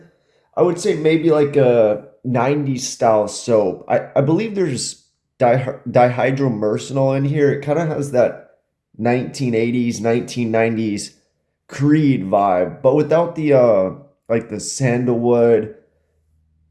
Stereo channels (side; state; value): both; identical; correlation 1.00